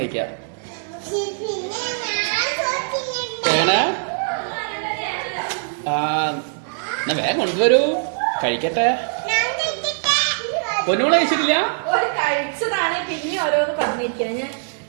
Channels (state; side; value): silent; left; digital silence